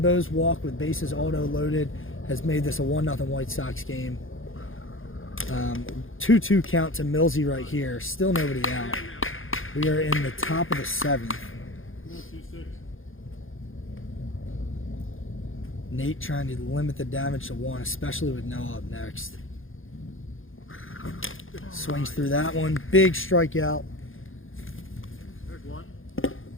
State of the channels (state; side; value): late; right; 0.59 ms